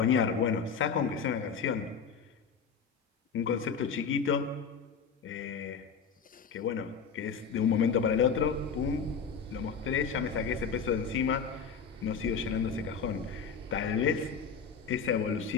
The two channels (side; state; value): right; quieter; 6.0 dB